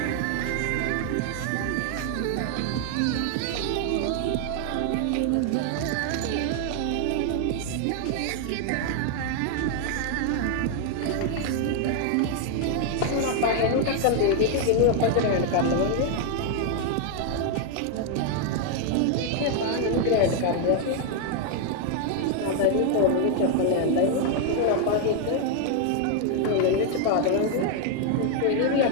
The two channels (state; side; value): different; both; correlation 0.00